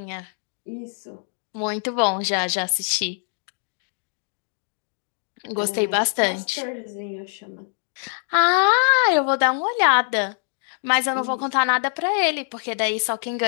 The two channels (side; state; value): right; silent; 61 dB below the other